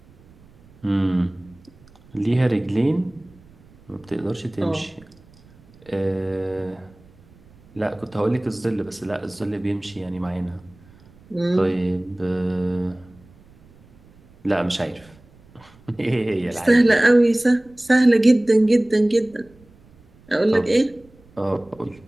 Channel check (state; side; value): noise; right; rumble, 27 dB below the sound